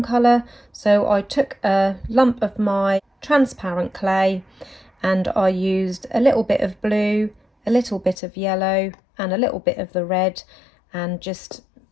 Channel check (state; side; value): drops out; right; at 8.2 s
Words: colour, so I took a lump of my transparent clay and I used a little bit of blue, a little bit of yellow and a little bit of the red, and just